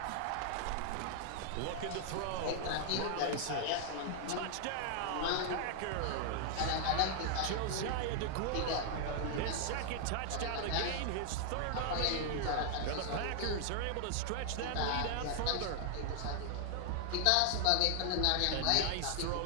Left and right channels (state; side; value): different; both; correlation 0.00